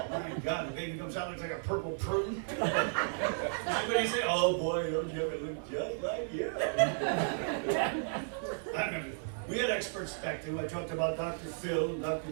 My God, the baby comes out looks like a purple prune. Everybody say, oh boy, those never look just like you. I remember. We had experts back then. I talked about Dr. Phil and Dr.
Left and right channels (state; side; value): silent; left; digital silence